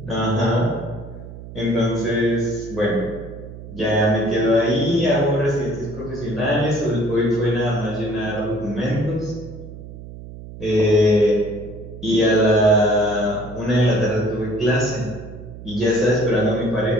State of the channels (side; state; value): right; noise; hum, 14 dB below the sound